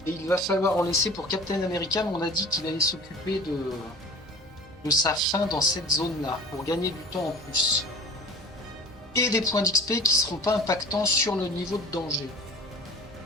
Et il va falloir en laisser pour Captain America, mais on a dit qu'il allait s'occuper de sa fin dans cette zone-là, pour gagner du temps en plus. Et des points d'XP qui ne seront pas impactants sur le niveau de danger.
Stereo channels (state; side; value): normal; both; correlation 0.41